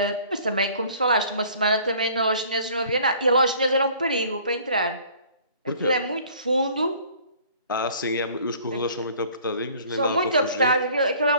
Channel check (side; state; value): both; inverted; correlation -0.53